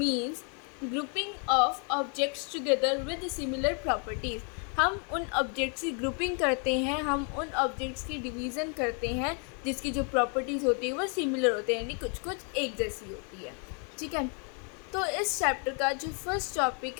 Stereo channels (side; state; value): right; quieter; 38.8 dB